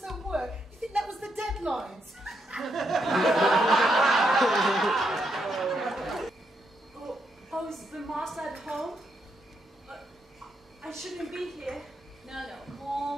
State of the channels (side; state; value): both; normal; correlation 0.79